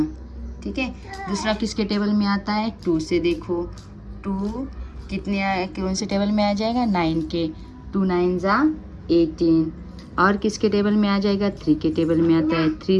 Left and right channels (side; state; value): both; identical; correlation 1.00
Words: ठीक है. दूसरा किसके टेबल में आता है, 2 से देखो. 2 कितने कौन से टेबल में आ जाएगा, 9 के. 2 9 जा 18. और किसके टेबल में आ जाएगा, 3 के टेबल में आता है. 3